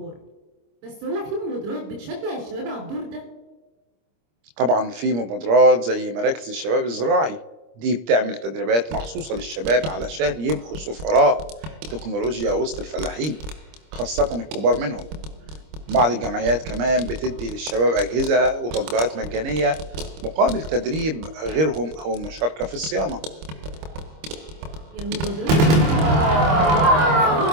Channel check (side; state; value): left; late; 26 ms